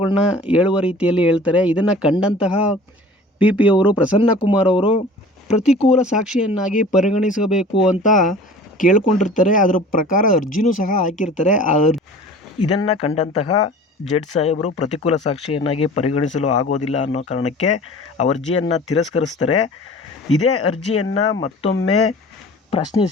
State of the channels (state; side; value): normal; both; correlation 0.44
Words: ಹೇಳುವ ರೀತಿಯಲ್ಲಿ ಹೇಳ್ತಾರೆ. ಇದನ್ನು ಕಂಡಂತಹ ಪಿ ಅವರು ಪ್ರಸನ್ನ ಕುಮಾರ್ ಅವರು ಪ್ರತಿಕೂಲ ಸಾಕ್ಷಿಯನ್ನಾಗಿ ಪರಿಗಣಿಸಬೇಕು ಅಂತ ಕೇಳ್ಕೊಂಡಿರ್ತಾರೆ. ಅದರ ಪ್ರಕಾರ ಅರ್ಜಿನೂ ಸಹ ಹಾಕಿರ್ತಾರೆ. ಇದನ್ನು ಕಂಡಂತಹ ಜಡ್ಜ್ ಸಾಹೇಬರು ಪ್ರತಿಕೂಲ ಸಾಕ್ಷಿಯನ್ನಾಗಿ ಪರಿಗಣಿಸಲು ಆಗೋದಿಲ್ಲ ಅನ್ನೋ ಕಾರಣಕ್ಕೆ ಅರ್ಜಿಯನ್ನು ತಿರಸ್ಕರಿಸ್ತಾರೆ. ಇದೇ ಅರ್ಜಿಯನ್ನು ಮತ್ತೊಮ್ಮೆ